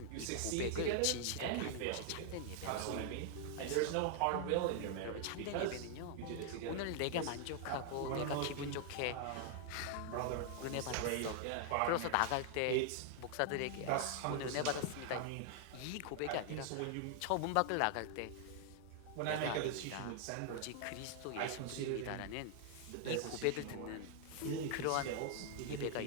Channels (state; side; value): different; both; correlation 0.00